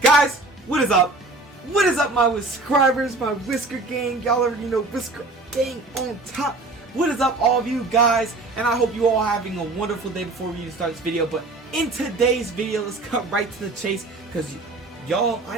Guys, what is up? What is up, my subscribers, my Whisker Gang? Y'all already know Whisker Gang on top. What is up, all of you guys? And I hope you all having a wonderful day before we start this video. But in today's video, let's cut right to the chase, because y'all, I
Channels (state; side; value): quieter; left; 3.1 dB